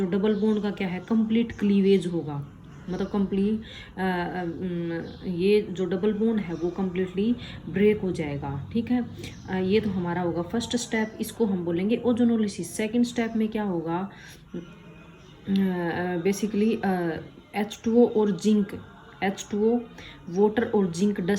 डबल बॉन्ड का क्या है, कंप्लीट क्लीवेज होगा। मतलब कंप्लीट ये जो डबल बॉन्ड है वो कम्प्लीटली ब्रेक हो जाएगा। ठीक है, ये तो हमारा होगा फर्स्ट स्टेप, इसको हम बोलेंगे ओजोनोलिसिस। सेकंड स्टेप में क्या होगा, बेसिकली H2O और जिंक, H2O वाटर और जिंक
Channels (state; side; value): identical; both; correlation 1.00